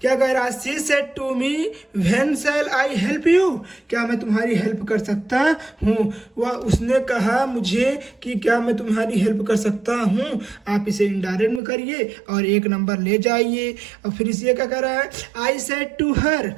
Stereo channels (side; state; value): left; drops out; at 11.6 s